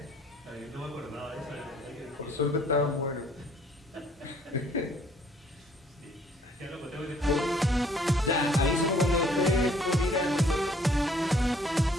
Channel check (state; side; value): normal; both; correlation 0.61